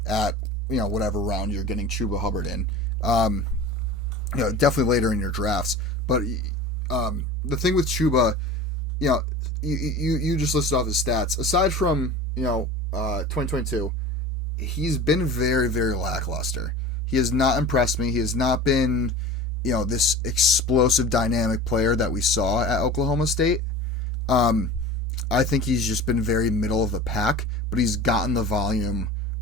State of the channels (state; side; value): normal; both; correlation 0.36